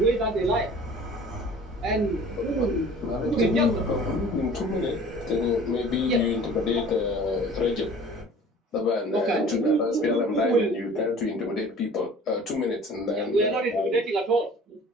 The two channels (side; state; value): both; normal; correlation 0.46